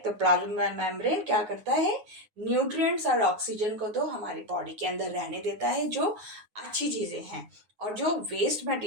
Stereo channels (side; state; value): left; late; 9.6 ms